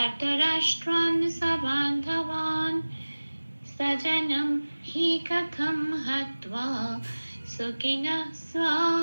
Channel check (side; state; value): both; inverted; correlation -1.00